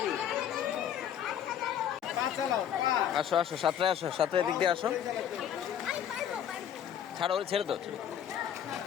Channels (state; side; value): quieter; right; 9.5 dB